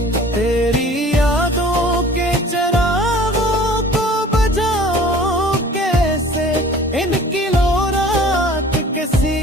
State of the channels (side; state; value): both; normal; correlation 0.47